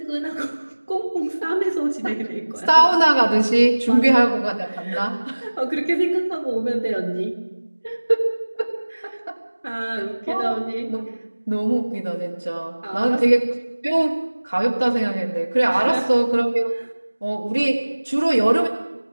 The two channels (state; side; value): inverted; both; correlation -1.00